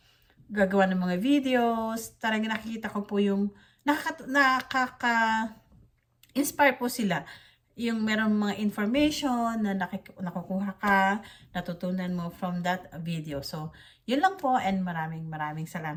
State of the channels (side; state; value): both; identical; correlation 1.00